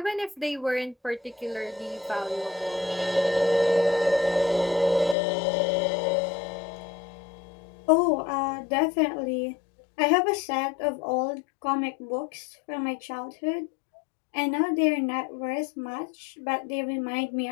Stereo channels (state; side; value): drops out; right; at 5.2 s